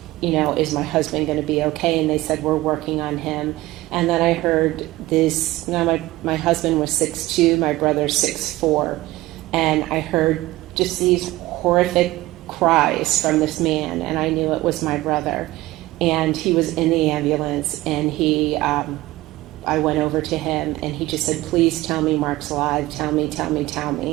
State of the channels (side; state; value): left; quieter; 18.0 dB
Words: you know, is my husband going to be okay? And they said, we're working on him. And then I heard this, now my husband was 6'2", my brother 6'4", and I heard just these horrific cries from this man, and I knew it was my brother. And he was in the ambulance, and I went over to him, and he just said, please tell me Mark's alive, tell me.